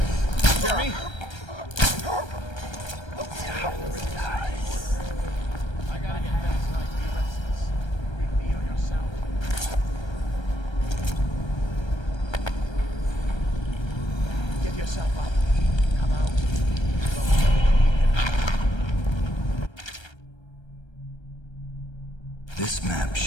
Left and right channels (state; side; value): late; right; 1.3 ms